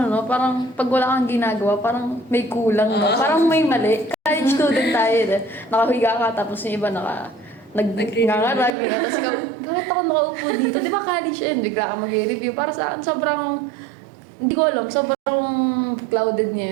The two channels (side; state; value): left; drops out; at 8.7 s